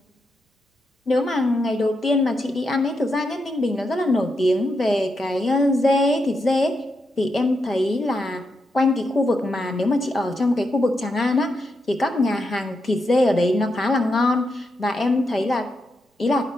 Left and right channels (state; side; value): normal; both; correlation 0.84